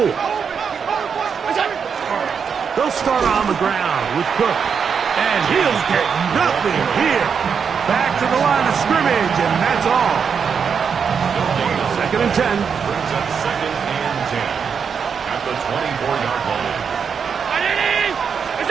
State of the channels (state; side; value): quieter; left; 6.5 dB